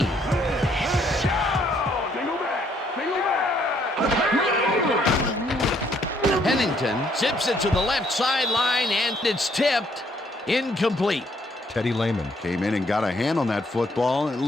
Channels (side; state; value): both; normal; correlation 0.68